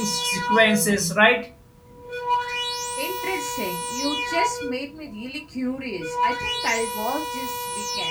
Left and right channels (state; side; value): identical; both; correlation 1.00